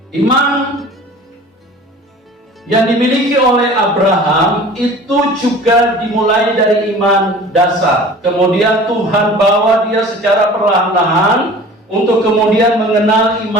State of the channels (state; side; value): normal; both; correlation 0.43